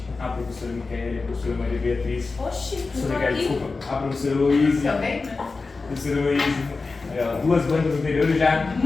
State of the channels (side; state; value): right; quieter; 4.0 dB